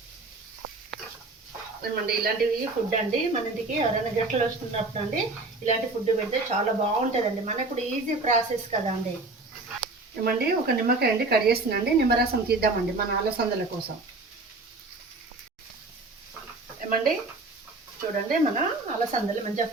ఏమండి ఇలాంటివి ఫుడ్ అండి మన ఇంటికి ఎవరైనా గెస్ట్లు వస్తున్నప్పుడు అండి ఇలాంటి ఫుడ్ పెడితే చాలా బాగుంటుందండి. మనకు కూడా ఈజీ ప్రాసెస్ కదా అండి. ఏమండి ఒక నిమ్మకాయ అండి కట్ చేస్తున్నాండి. నిమ్మరసం తీద్దామండి మన అలసందల కోసం. ఏమండి చూడండి, మన అలసందలు మంచిగా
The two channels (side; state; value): left; quieter; 3.3 dB